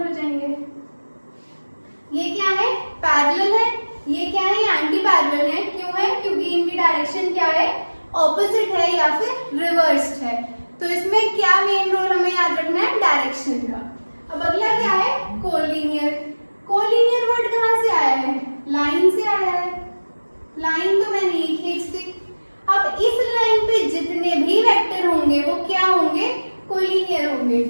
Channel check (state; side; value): inverted; both; correlation -1.00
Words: जाएंगे। ये क्या है, पैरेलल है, ये क्या है, एंटी पैरेलल है। क्यों है, क्योंकि इनकी डायरेक्शन क्या है, ऑपोजिट है या फिर रिवर्स्ड है। तो इसमें क्या मेन रोल हमें याद रखना है, डायरेक्शन का। अब अगला क्या है, कोलिनियर। कोलिनियर वर्ड कहाँ से आया है, लाइन से आया है। लाइन तो मैंने ये खींच दी। अब इस लाइन पे जितने भी वेक्टर होंगे वो क्या होंगे, कोलिनियर होंगे।